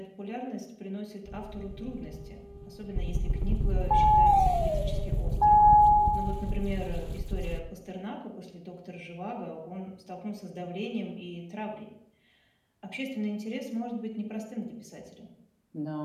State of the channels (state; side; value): identical; both; correlation 1.00